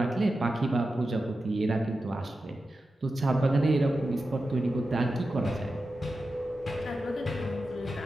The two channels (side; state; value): both; normal; correlation 0.91